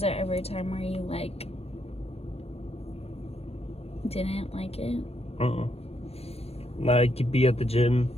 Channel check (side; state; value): right; late; 0.29 ms